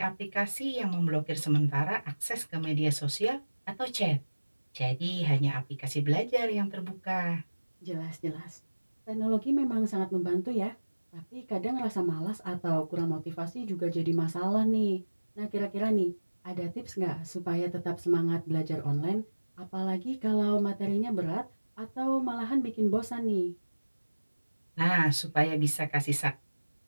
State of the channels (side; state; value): both; inverted; correlation -1.00